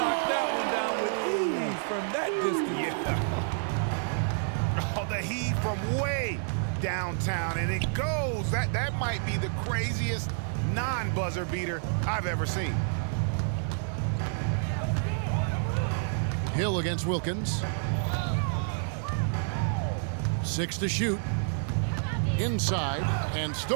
knocked that one down with ease from that distance. Yeah. Oh, the heat from way downtown, and it goes. That might be the craziest non-buzzer beater I've ever seen. Hill against Wilkins. 6 to shoot. Inside and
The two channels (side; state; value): left; silent; 55 dB below the other